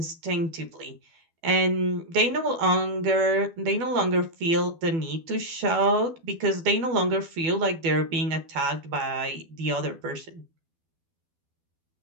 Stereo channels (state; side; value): late; left; 12 ms